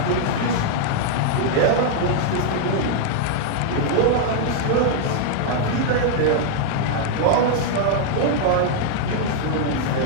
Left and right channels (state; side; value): different; both; correlation -0.01